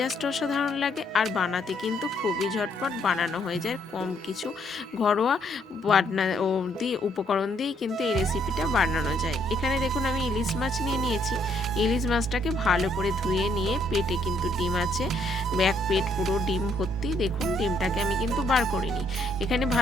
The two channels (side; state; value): both; normal; correlation 0.70